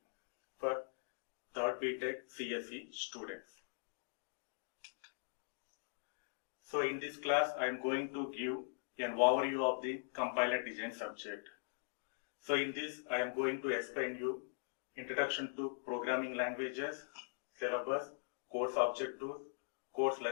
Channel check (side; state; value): right; silent; digital silence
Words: for 3rd BTech CSE students. So in this class, I am going to give an overview of the compiler design subject. So in this, I am going to explain you introduction to programming languages, syllabus, course objectives, course